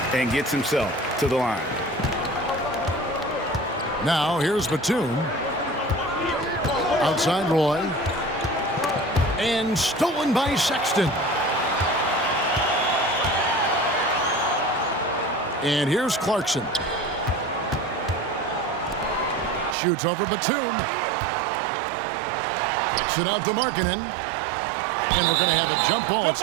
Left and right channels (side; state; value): left; drops out; at 19.8 s